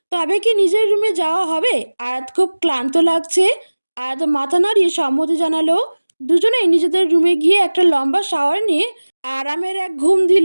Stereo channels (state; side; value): inverted; both; correlation -1.00